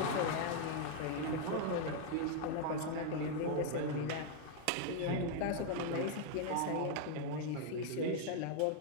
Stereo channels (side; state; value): both; different; correlation 0.00